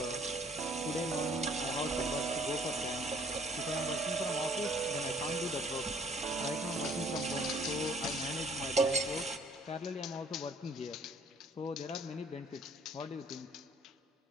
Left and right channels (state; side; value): normal; both; correlation 0.58